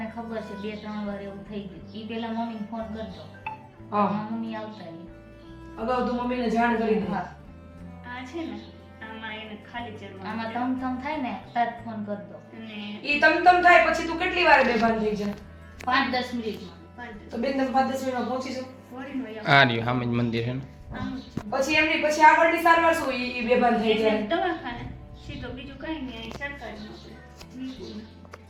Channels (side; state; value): both; identical; correlation 1.00